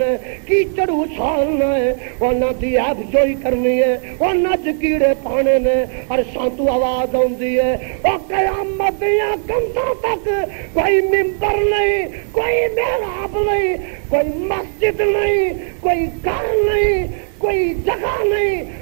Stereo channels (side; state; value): left; silent; 59 dB below the other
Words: نے, کیچڑ اچھالنا ہے, انہاں دی عیب جوئی کرنی ہے, انہاں چ کیڑے پانے نے. عرشاں تو آواز آندی ہے او قیامت دیاں کنتاں تک کوئی ممبر نہیں, کوئی محراب نہیں, کوئی مسجد نہیں, کوئی گھر نہیں, کوئی جگہ نہیں,